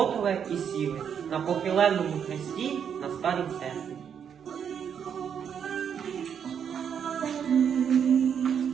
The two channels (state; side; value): quieter; left; 7.8 dB